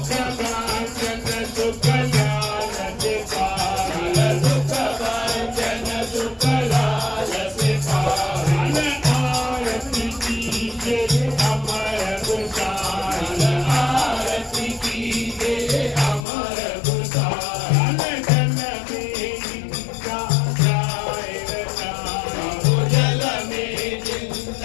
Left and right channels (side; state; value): right; drops out; at 16.2 s